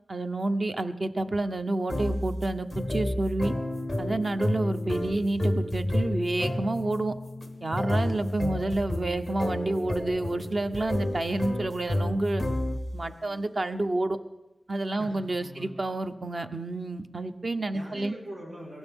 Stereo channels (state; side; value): normal; both; correlation 0.95